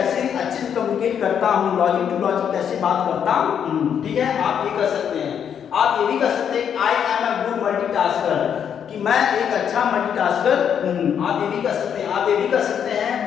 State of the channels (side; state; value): right; quieter; 8.3 dB